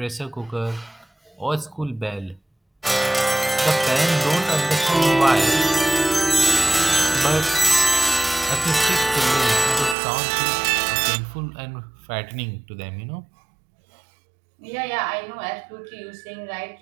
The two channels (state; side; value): drops out; left; at 10.0 s